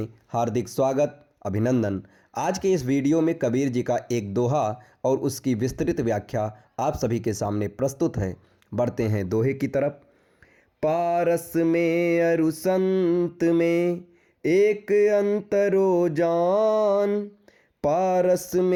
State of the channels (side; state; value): both; identical; correlation 1.00